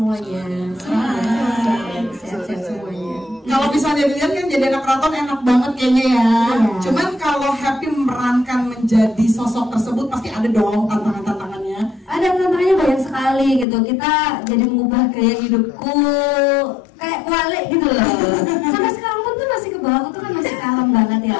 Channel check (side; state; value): right; drops out; at 13.7 s